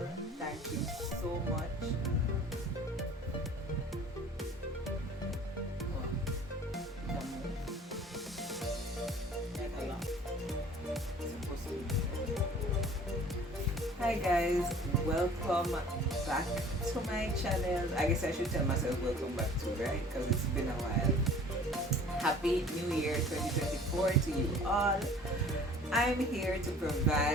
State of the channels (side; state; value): both; normal; correlation 0.48